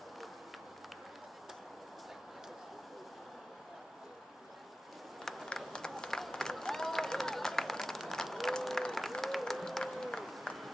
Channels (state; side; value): normal; both; correlation 0.94